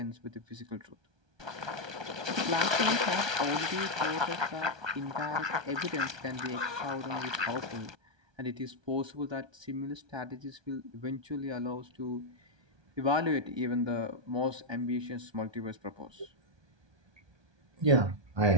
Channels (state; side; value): late; left; 1.2 ms